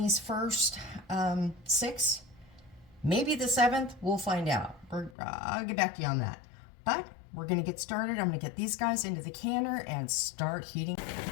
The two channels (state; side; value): drops out; right; at 5.2 s